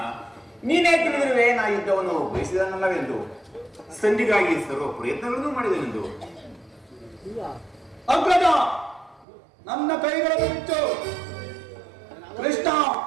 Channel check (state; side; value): drops out; left; at 9.2 s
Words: ನೀನೇ ತಿಳಿದಿರುವೆ ನಾ ಯುದ್ಧವನ್ನು ಬಯಸಿದನಲ್ಲವೆಂದು, ಸಂಧಿಗಾಗಿ ಸರ್ವ ಪ್ರಯತ್ನಗಳನ್ನು ಮಾಡಿದನೆಂದು. ಅಗ್ರಜ ನನ್ನ ಕೈಗಳನ್ನು ಬಿಚ್ಚು, ಕೃಷ್ಣ